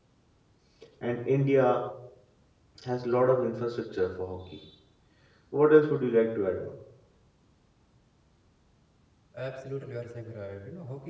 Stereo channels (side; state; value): both; identical; correlation 1.00